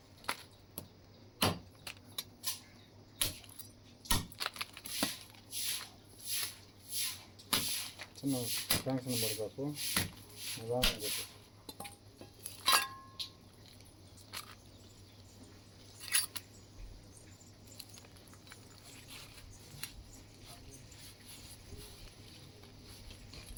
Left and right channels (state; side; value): identical; both; correlation 1.00